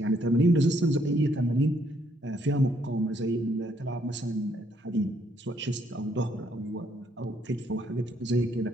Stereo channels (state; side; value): normal; both; correlation 0.70